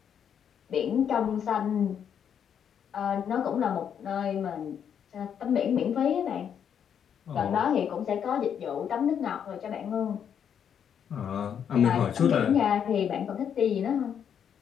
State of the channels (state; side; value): quieter; right; 8.3 dB